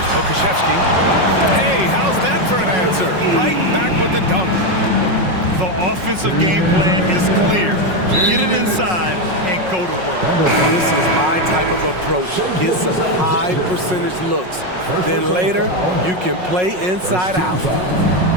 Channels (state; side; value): late; left; 5.5 ms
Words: Pokashevsky. Hey, how's that for an answer? Right back with the dunk. The offensive game plan is clear. Get it inside and go to work. This is my type of approach. Get some high percentage looks. Then later, you can play inside out.